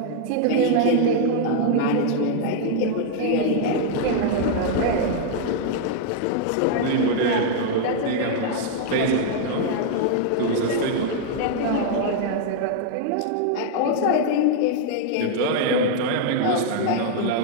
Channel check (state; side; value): different; both; correlation 0.00